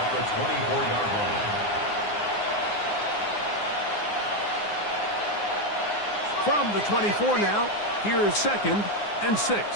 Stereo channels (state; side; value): late; right; 9.7 ms